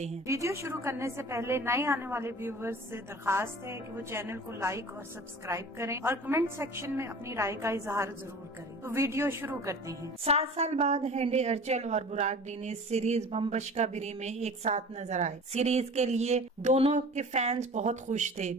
हैं। वीडियो शुरू करने से पहले नए आने वाले व्यूवर्स से दरखास्त है कि वो चैनल को लाइक और सब्सक्राइब करें और कमेंट सेक्शन में अपनी राय का इजहार जरूर करें। तो वीडियो शुरू करते हैं। 7 साल बाद हेंडे अर्चल और बुराक डीनिस सीरीज बम बशका बिरे में एक साथ नजर आए। सीरीज के लिए दोनों के फैंस बहुत खुश थे।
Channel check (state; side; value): normal; both; correlation 0.41